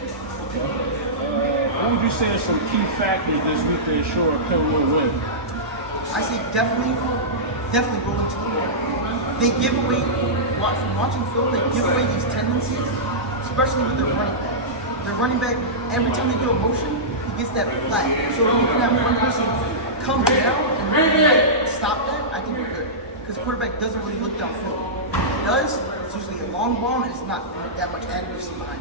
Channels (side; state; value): both; normal; correlation -0.15